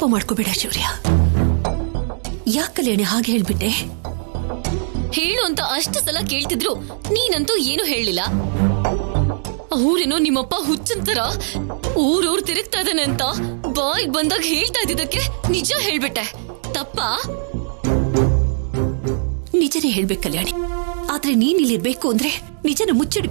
ಮಾಡ್ಕೋಬೇಡ ಶೌರ್ಯ. ಯಾಕಲ್ಲೇಣೆ ಹಾಗೆ ಹೇಳ್ಬಿಟ್ಟೆ? ಹೇಳು ಅಂತ ಅಷ್ಟು ಸಲ ಕೇಳ್ತಿದ್ರು, ನೀನಂತೂ ಏನು ಹೇಳಿಲ್ಲ. ಅವ್ರೇನೋ ನಿಮ್ಮಪ್ಪ ಹುಚ್ಚಂತರ ಊರೂರ್ ತಿರುಗ್ತಾ ಇದ್ದಾನೆ ಅಂತ ಬಾಯಿಗೆ ಬಂದಾಗ ಹೇಳ್ತಾ ಇದ್ದಿದ್ದಕ್ಕೆ ನಿಜ ಹೇಳ್ಬಿಟ್ಟೆ. ತಪ್ಪಾ? ನಿಜನೇ ಹೇಳ್ಬೇಕು ಕಲ್ಯಾಣಿ. ಆದ್ರೆ ನೀನ್ ಇಲ್ಲಿರ್ಬೇಕು ಅಂದ್ರೆ ನಿಜನ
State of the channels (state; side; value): silent; left; digital silence